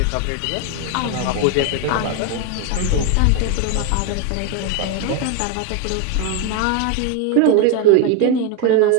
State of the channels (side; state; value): both; different; correlation 0.01